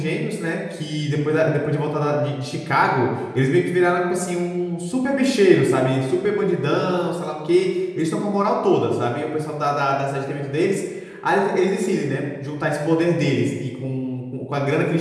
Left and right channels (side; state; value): both; identical; correlation 1.00